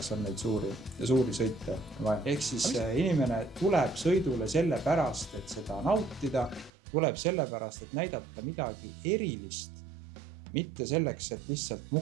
on neid suuri sõite vaja. Ehk siis inimene tuleb sõidule selle pärast, et seda nautida, tuleb selle pärast, et näidata midagi erilist, mitte selleks, et lihtsalt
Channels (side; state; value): left; drops out; at 6.7 s